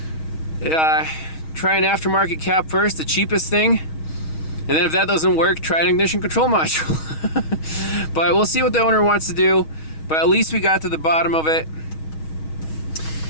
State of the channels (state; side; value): late; right; 6.3 ms